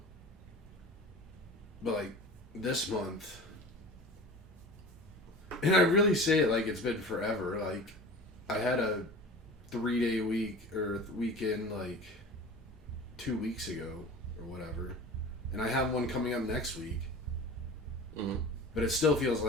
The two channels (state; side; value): normal; both; correlation 0.37